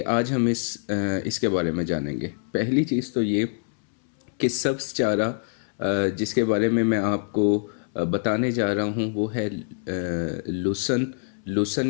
आज हम इसके बारे में जानेंगे। पहली चीज़ तो ये कि सब्ज़ चारा जिसके बारे में मैं आपको बताने जा रहा हूँ वो है लुसन।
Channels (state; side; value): silent; right; 62 dB below the other